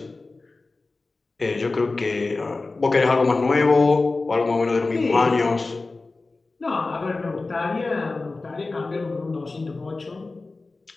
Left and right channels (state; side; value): quieter; right; 3.5 dB